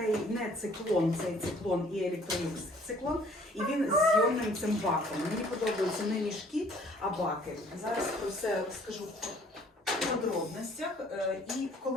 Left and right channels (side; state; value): both; normal; correlation 0.57